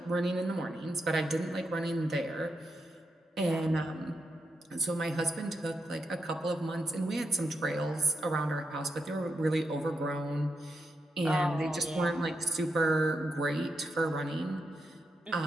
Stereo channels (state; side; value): normal; both; correlation 0.84